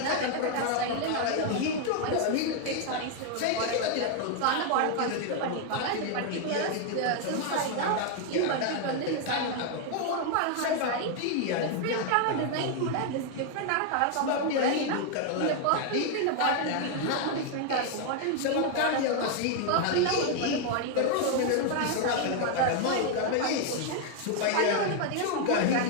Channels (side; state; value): both; different; correlation 0.00